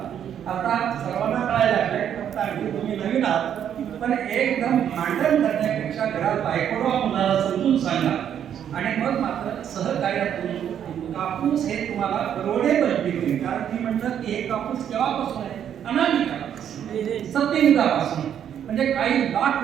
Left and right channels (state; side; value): quieter; left; 9.3 dB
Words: सर्वांना कळायला लागलंय, फक्त अगदी तुम्ही नवीन आहात, पण एकदम भांडण करण्यापेक्षा घरात बायकोला मुलाला समजून सांगा आणि मग मात्र सहकार्यातून कापूस हे तुम्हाला परवडेबल पीक होईल. कारण मी म्हटलं की हे कापूस केव्हापासून आहे? अनादी काळापासून, सत्ययुगापासून, म्हणजे काही लाख